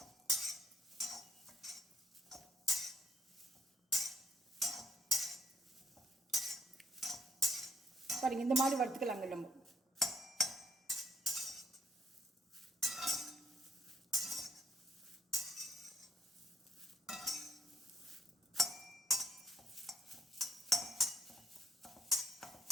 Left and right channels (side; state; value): both; normal; correlation 0.68